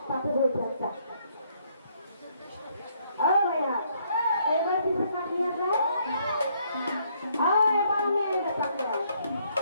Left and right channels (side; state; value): both; inverted; correlation -0.69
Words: তাতে বহি থাক। এবার পিছনে কাটিয়ে যায়, এবার আমি